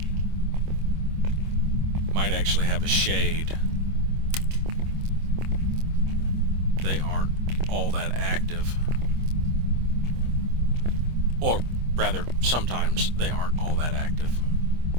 Might actually have a shade. They aren't all that active. Or rather, sometimes they aren't all that active.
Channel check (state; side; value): late; left; 25 ms